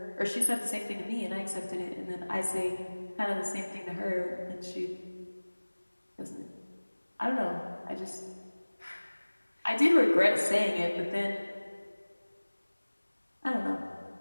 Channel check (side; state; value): both; inverted; correlation -1.00